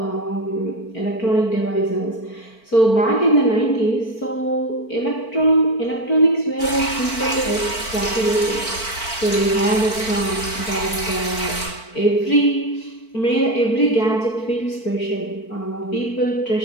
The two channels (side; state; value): right; late; 4.5 ms